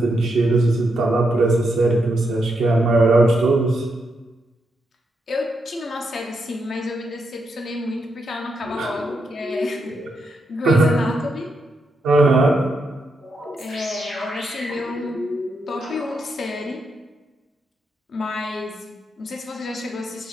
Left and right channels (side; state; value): both; normal; correlation 0.82